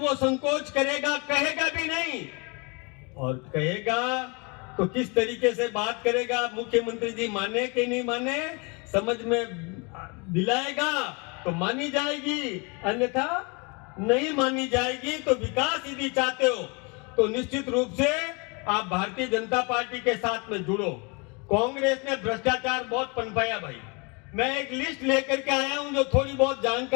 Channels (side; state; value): right; quieter; 30.9 dB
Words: संकोच करेगा, कहेगा भी नहीं, और कहेगा तो किस तरीके से बात करेगा, मुख्यमंत्री जी माने कि नहीं माने, समझ में दिलाएगा तो मानी जाएगी, अन्यथा नहीं मानी जाएगी। तो विकास यदि चाहते हो तो निश्चित रूप से आप भारतीय जनता पार्टी के साथ में जुड़ो। कांग्रेस ने भ्रष्टाचार बहुत पनपाया भाई। मैं एक लिस्ट लेकर के आया हूं जो थोड़ी बहुत